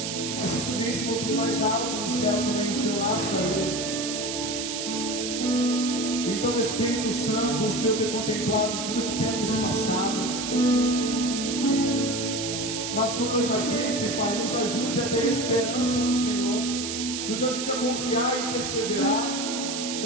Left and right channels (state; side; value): noise; right; hiss, 4 dB below the sound